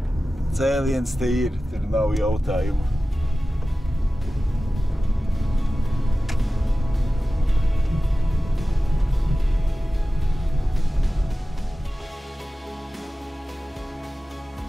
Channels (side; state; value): both; normal; correlation 0.95